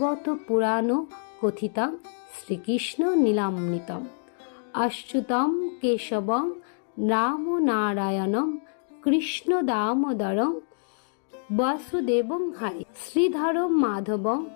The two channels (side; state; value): right; silent; digital silence